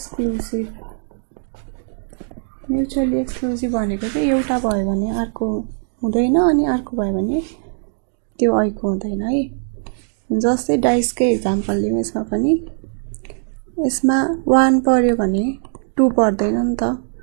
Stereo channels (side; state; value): left; silent; digital silence